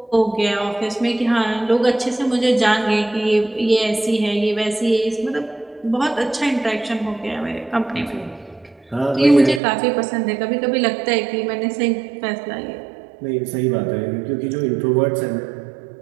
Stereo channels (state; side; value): drops out; left; at 9.6 s